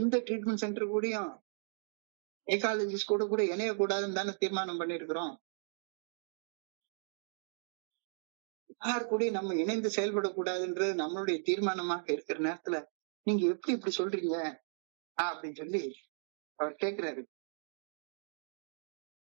ட்ரீட்மெண்ட் சென்டர் கூடயும் சைக்காலஜிஸ்ட் கூட இணையக்கூடாதுன்னு தானே தீர்மானம் பண்ணிருக்கிறோம். யார் கூட நம்ம இணைந்து செயல்படக்கூடாதுன்றது நம்மளுடைய தீர்மானமாக இருக்கிற நேரத்துல நீங்க எப்படி இப்படி சொல்றீங்க அப்படின்னு சொல்லி அவர் கேட்கிறாரு.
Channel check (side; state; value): left; silent; digital silence